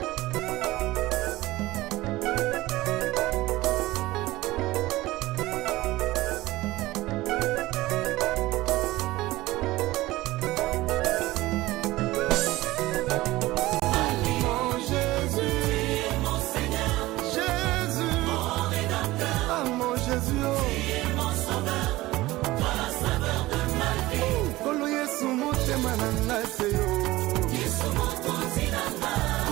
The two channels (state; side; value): quieter; left; 18.3 dB